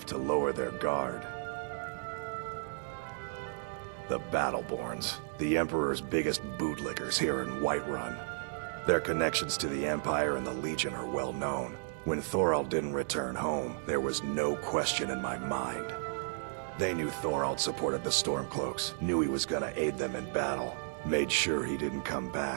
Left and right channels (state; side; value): silent; left; digital silence